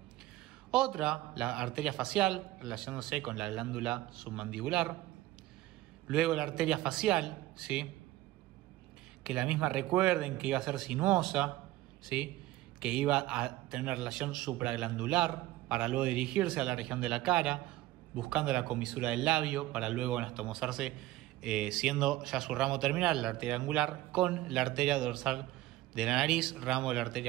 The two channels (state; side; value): quieter; left; 16.5 dB